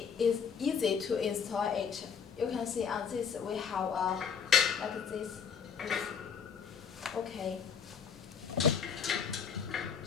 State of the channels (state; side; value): quieter; right; 6.7 dB